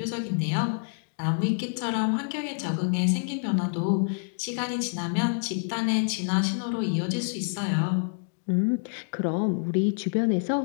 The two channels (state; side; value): silent; right; digital silence